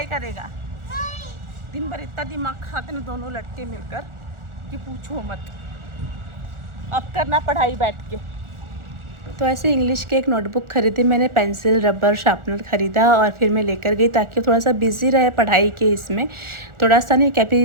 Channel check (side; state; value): left; late; 1.4 ms